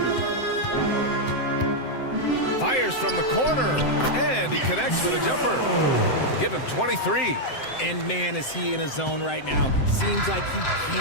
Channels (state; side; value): late; right; 7.7 ms